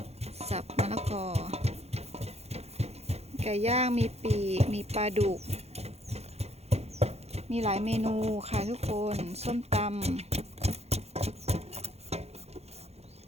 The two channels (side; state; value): left; late; 0.31 ms